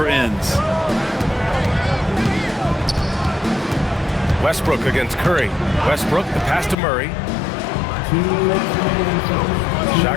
ends. Westbrook against Curry. Westbrook, the pass to Murray.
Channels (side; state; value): right; drops out; at 6.8 s